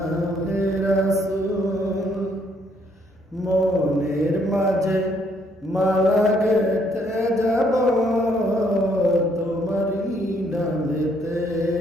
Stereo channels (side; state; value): both; normal; correlation 0.69